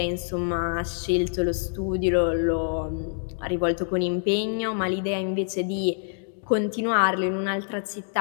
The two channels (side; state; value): right; silent; digital silence